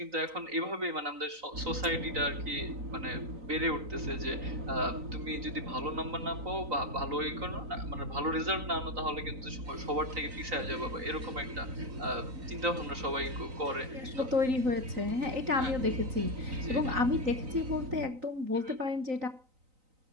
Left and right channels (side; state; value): left; late; 3.9 ms